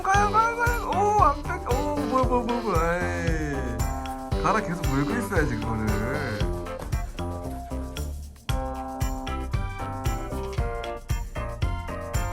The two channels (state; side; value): identical; both; correlation 1.00